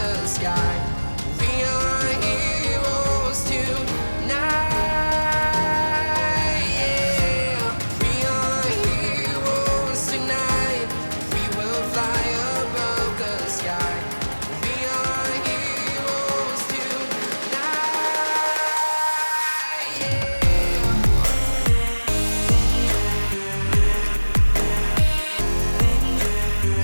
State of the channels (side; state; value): both; inverted; correlation -1.00